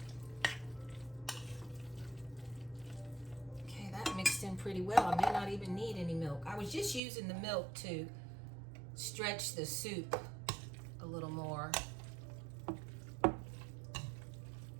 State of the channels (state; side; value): drops out; left; at 7.0 s